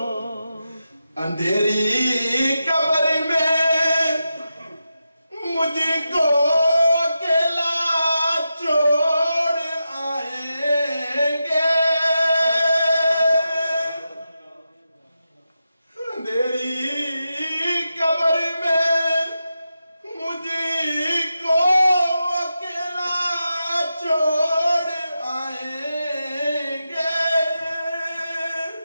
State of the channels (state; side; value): inverted; both; correlation -0.89